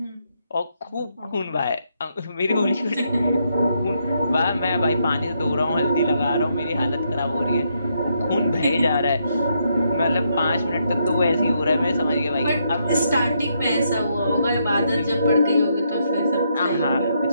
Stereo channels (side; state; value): both; inverted; correlation -0.77